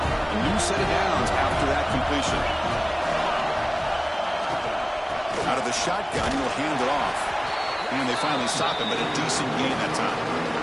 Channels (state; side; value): identical; both; correlation 1.00